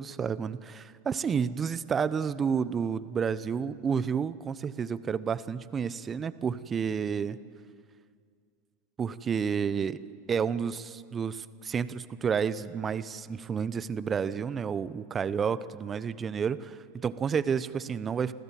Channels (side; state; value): left; quieter; 6.4 dB